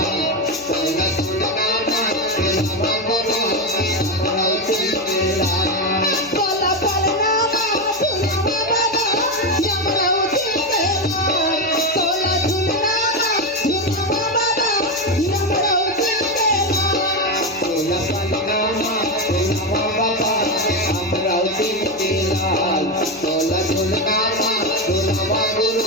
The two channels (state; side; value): noise; right; hum, 25 dB below the sound